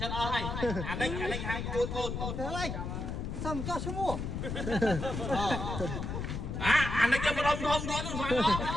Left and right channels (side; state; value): left; noise; rumble, 4 dB below the sound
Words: ្តអស់ហើយអានេះហើយកូន ទៅហើយសំចោះឈ្មោះ អានេះចាំរំធំទៀតស្មានអត